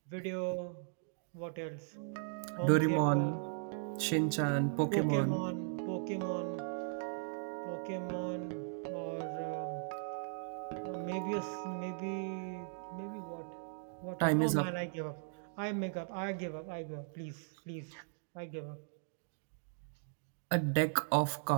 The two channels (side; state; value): left; silent; digital silence